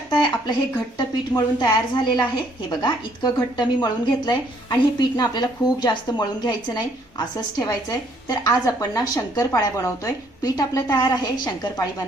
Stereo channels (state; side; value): normal; both; correlation 0.65